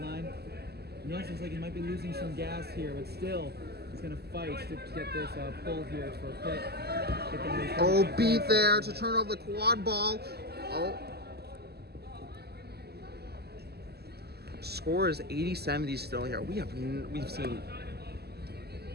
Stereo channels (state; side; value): late; left; 0.47 ms